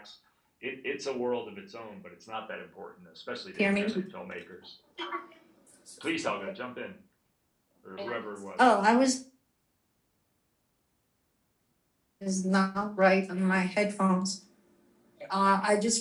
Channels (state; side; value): identical; both; correlation 1.00